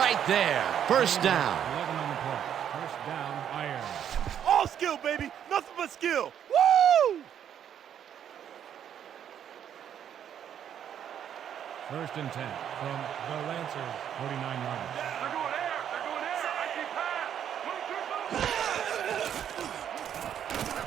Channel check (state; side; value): quieter; left; 9.3 dB